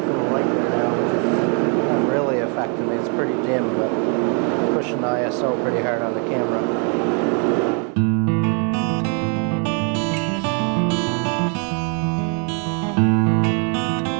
so pretty hard on the camera.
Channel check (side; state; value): left; quieter; 38.2 dB